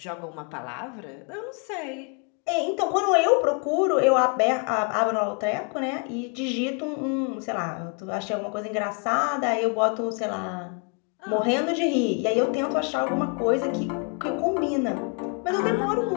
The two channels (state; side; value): quieter; right; 39.0 dB